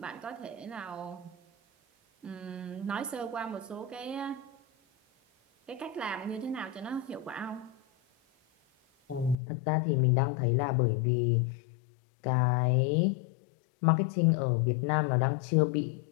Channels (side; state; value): right; drops out; at 9.3 s